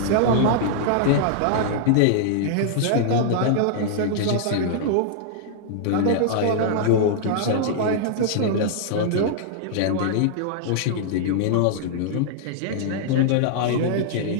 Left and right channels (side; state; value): both; different; correlation -0.01